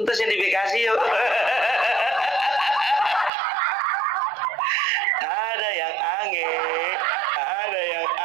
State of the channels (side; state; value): left; drops out; at 3.3 s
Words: yang di Bekasi yuk. Ada yang aneh, ada yang